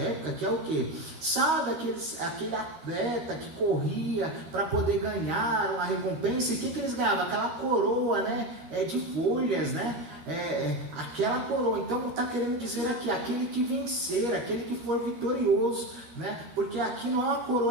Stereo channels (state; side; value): late; left; 13 ms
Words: que é o quê? Sabe aquele atleta que corria para poder ganhar uma recompensa, e o que eles ganhavam? Aquela coroa, né? De folhas, né? Aquela coroa. Então está querendo dizer aqui, aquele que vencer, aquele que for vitorioso, né? Porque aqui não é uma